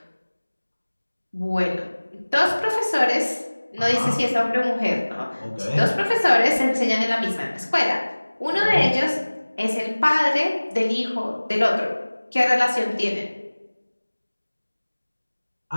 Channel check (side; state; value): both; inverted; correlation -1.00